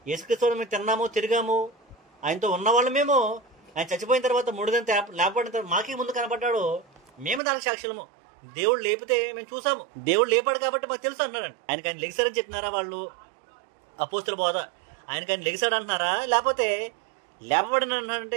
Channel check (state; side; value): drops out; left; at 7.4 s